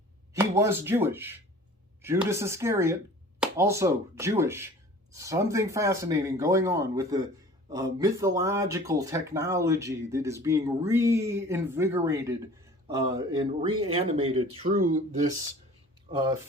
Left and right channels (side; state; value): both; normal; correlation 0.45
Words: He was Jewish. Judas Iscariot, also Jewish. Something fascinating going on with the mythological technology that is being reinvigorated and reanimated through this